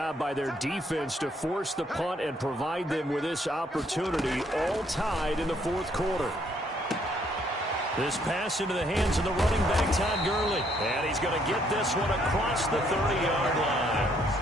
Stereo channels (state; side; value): normal; both; correlation 0.68